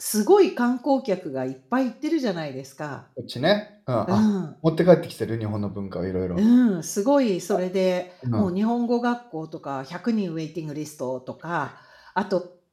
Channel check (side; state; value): both; identical; correlation 1.00